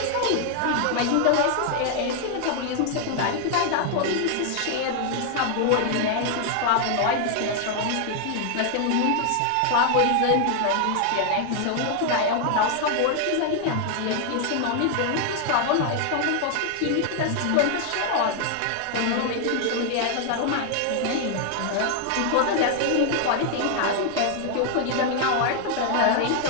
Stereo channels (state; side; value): different; both; correlation 0.00